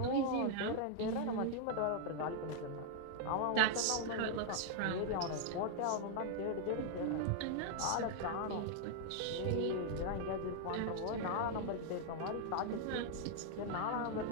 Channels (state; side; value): different; both; correlation 0.00